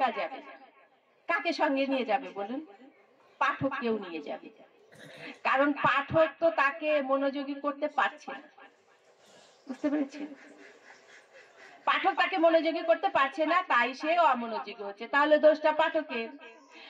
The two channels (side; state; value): both; identical; correlation 1.00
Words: যাবে, কাকে সঙ্গে নিয়ে যাবে বলুন? পাঠক কেউ নিয়ে যাবে, কারণ পাঠক তো তাকে মনোযোগী করতে পারছে না। বুঝতে পেরেছেন? পাঠক তাকে মনোযোগী করতে পারছে না, তাই সে অমনোযোগী হচ্ছে। তাহলে দোষটা পাঠকের।